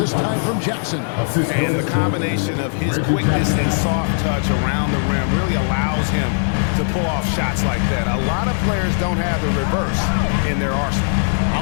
time from Jackson. And the combination of his quickness and soft touch around the rim really allows him to pull off shots like that. A lot of players don't have the reverse in their arsenal.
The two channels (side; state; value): right; silent; 65 dB below the other